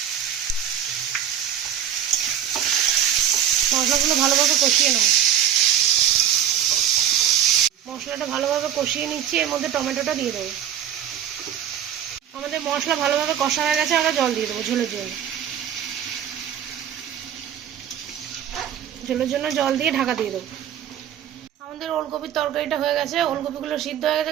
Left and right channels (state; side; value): quieter; left; 10.0 dB